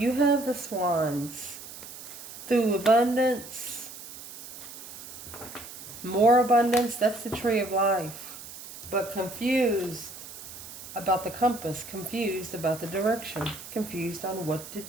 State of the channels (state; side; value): noise; right; hiss, 13 dB below the sound